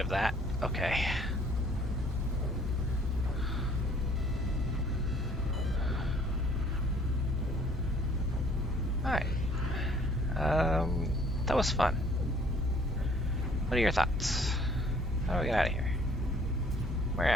of that? Okay. Alright. That was fun. What are your thoughts? How do we get out of here? Where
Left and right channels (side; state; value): both; normal; correlation 0.58